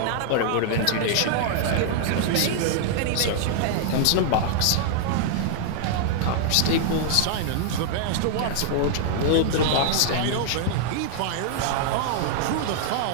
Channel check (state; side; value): different; both; correlation -0.01